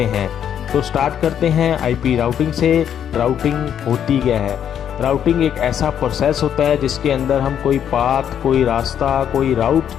हैं। तो स्टार्ट करते हैं आईपी राउटिंग से। राउटिंग होती क्या है? राउटिंग एक ऐसा प्रोसेस होता है जिसके अंदर हम कोई पाथ, कोई रास्ता, कोई राउट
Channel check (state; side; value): quieter; right; 9.2 dB